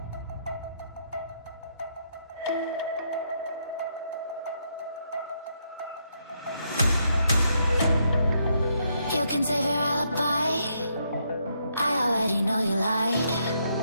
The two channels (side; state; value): both; inverted; correlation -0.76